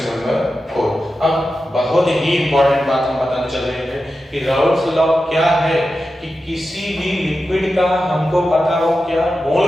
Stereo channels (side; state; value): both; normal; correlation 0.91